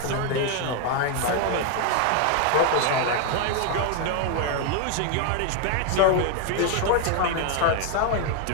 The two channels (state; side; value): different; both; correlation 0.01